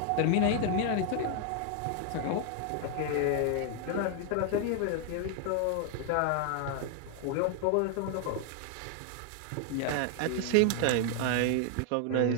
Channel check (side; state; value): both; different; correlation 0.00